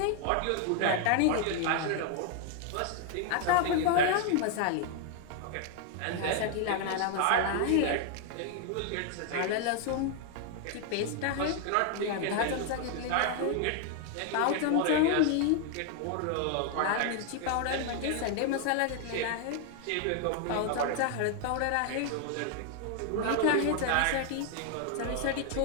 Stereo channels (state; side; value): different; both; correlation 0.00